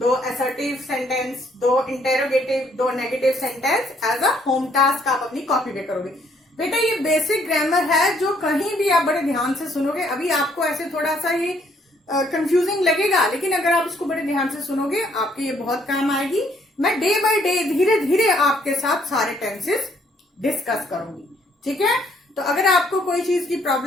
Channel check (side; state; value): both; normal; correlation 0.67